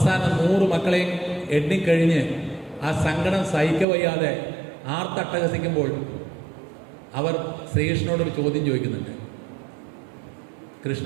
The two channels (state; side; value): drops out; left; at 3.9 s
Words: 100 മക്കളെയും എണ്ണിക്കഴിഞ്ഞ് ആ സങ്കടം സഹിക്കവയ്യാതെ ആർത്തട്ടഹസിക്കുമ്പോൾ അവർ ശ്രീകൃഷ്ണനോടൊരു ചോദ്യം ചോദിക്കുന്നുണ്ട്.